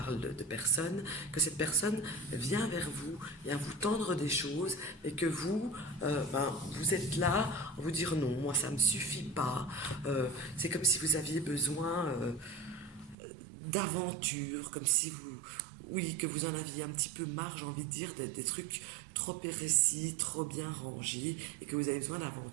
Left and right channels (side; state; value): left; drops out; at 13.2 s